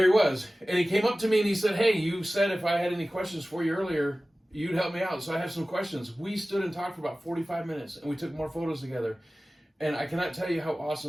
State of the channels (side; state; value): both; normal; correlation 0.97